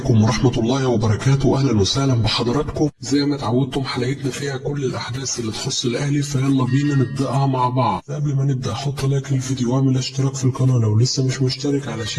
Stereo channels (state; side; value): identical; both; correlation 1.00